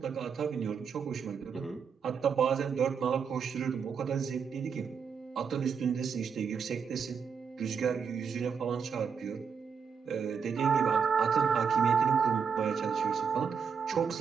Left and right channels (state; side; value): quieter; left; 6.4 dB